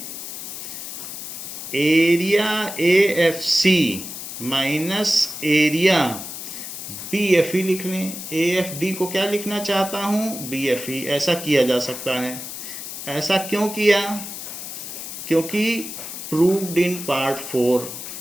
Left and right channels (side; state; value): left; noise; hiss, 9 dB below the sound